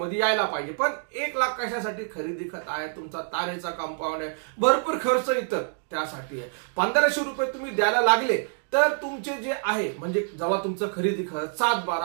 यायला पाहिजे. पण 1 लाख कशासाठी? खरेदी खत आहे, तुमचा तारेचा कंपाऊंड आहे, भरपूर खर्च इतर त्यासाठी आहे. 1500 रुपये तुम्ही द्यायला लागले तर तुमचे जे आहे म्हणजे जेव्हा तुमचं खरेदी खत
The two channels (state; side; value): silent; left; 61 dB below the other